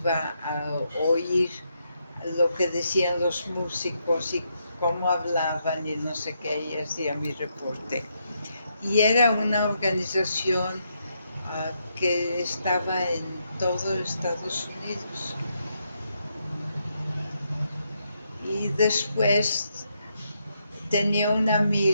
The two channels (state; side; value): inverted; both; correlation -0.79